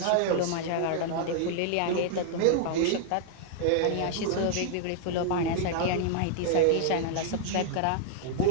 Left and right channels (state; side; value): different; both; correlation 0.00